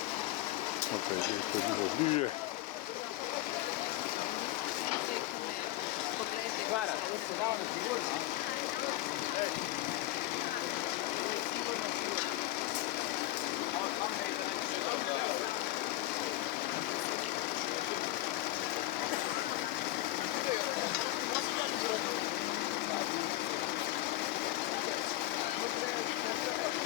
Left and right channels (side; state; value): right; quieter; 16.3 dB